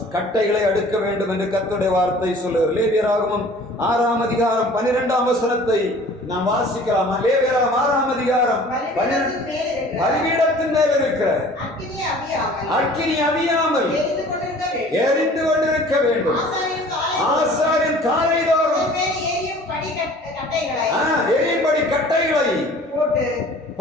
கட்டைகளை அடுக்க வேண்டும் என்று கர்த்தருடைய வார்த்தை சொல்லுகிறது. லேவியராகமம் 6ஆம் அதிகாரம் 12ஆம் வசனத்தை நாம் வாசிக்கலாம். லேவியராகமம் 6ஆம் அதிகாரம் பலிபீடத்தின் மேல் இருக்கிற அக்கினி அவியாமல் எரிந்து கொண்டிருக்க வேண்டும். ஆசாரியன் காலைதோறும் எரியும்படி கட்டைகளை போட்டு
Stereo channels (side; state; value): both; normal; correlation 0.48